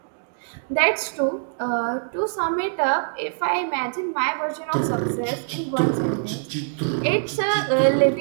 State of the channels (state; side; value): silent; left; digital silence